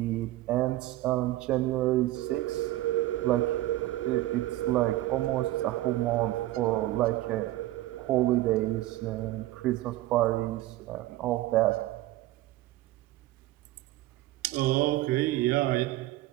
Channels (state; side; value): quieter; left; 16.2 dB